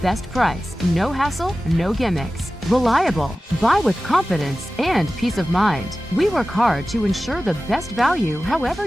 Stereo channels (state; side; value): normal; both; correlation 0.96